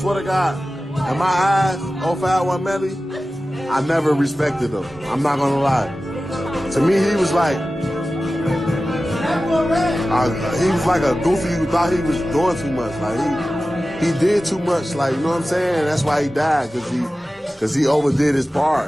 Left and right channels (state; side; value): normal; both; correlation 0.95